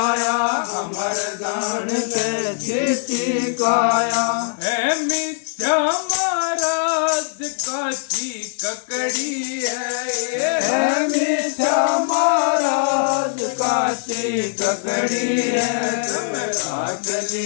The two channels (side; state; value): right; silent; digital silence